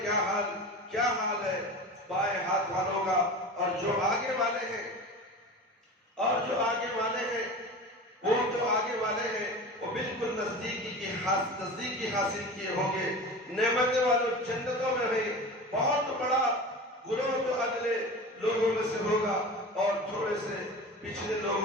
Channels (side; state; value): both; normal; correlation 0.32